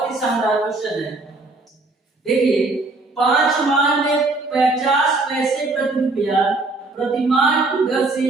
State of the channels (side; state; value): left; quieter; 3.2 dB